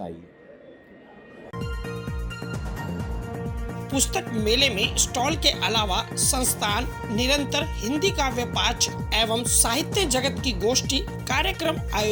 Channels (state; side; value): identical; both; correlation 1.00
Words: पुस्तक मेले में स्टॉल के अलावा संस्थान निरंतर हिंदी काव्य पाठ एवं साहित्य जगत की गोष्ठी कार्यक्रम